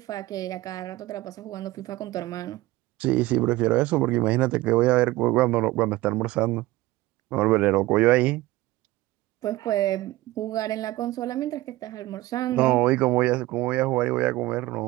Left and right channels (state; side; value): quieter; left; 18.2 dB